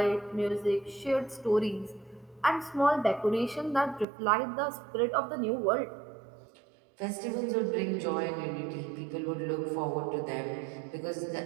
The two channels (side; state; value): left; drops out; at 4.0 s